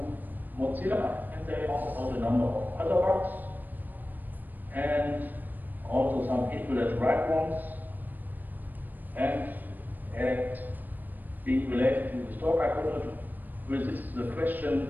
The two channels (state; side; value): late; left; 0.088 ms